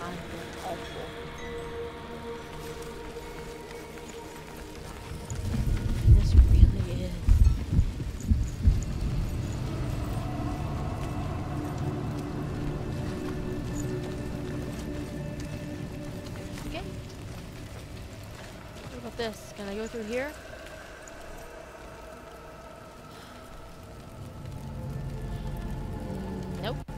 of awful. This really is. Okay. What about this? Can I go through here? Nope.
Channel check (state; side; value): identical; both; correlation 1.00